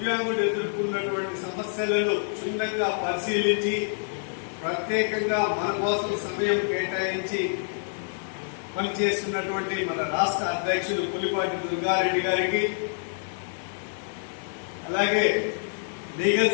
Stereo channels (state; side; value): silent; right; 60 dB below the other